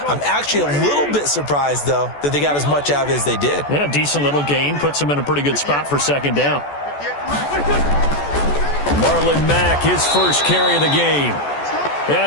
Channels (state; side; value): late; right; 14 ms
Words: I'm actually a little bit surprised, though, that they got as much out of it as they did. Yeah, decent little gain. Puts them in a pretty good spot for 2nd down. Marlon Mack, his first carry of the game.